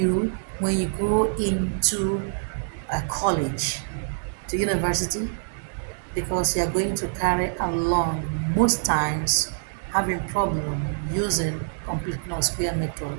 when you go into a college, to university, because you are going to carry along most times having problem using completing of square method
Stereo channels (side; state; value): left; silent; digital silence